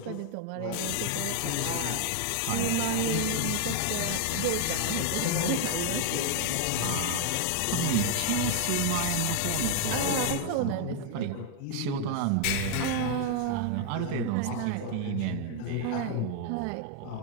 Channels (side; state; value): both; different; correlation 0.00